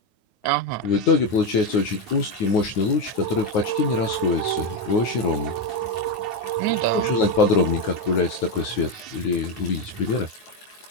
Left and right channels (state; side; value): late; right; 9.4 ms